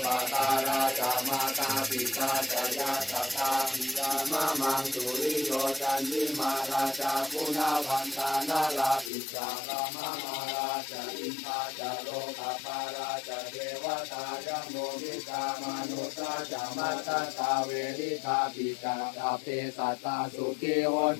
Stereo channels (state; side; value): drops out; right; at 9.1 s